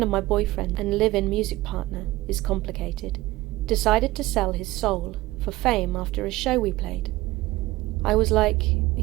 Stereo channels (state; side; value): quieter; left; 18.2 dB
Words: of my boyfriend and live-in music partner, is complicated, decided to sell his soul for fame after a show we played. I was like,